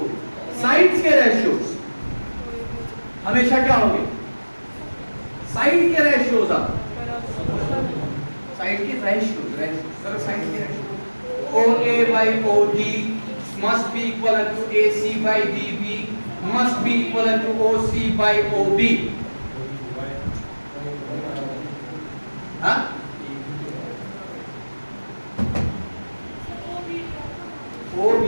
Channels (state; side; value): inverted; both; correlation -1.00